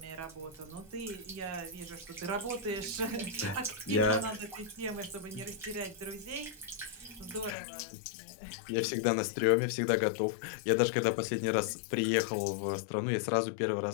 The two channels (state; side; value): drops out; right; at 7.6 s